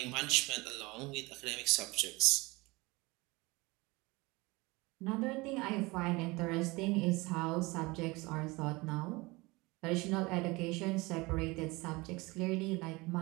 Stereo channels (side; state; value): left; quieter; 23.6 dB